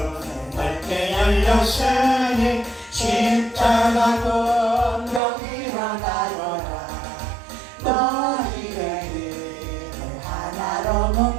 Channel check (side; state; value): left; drops out; at 5.2 s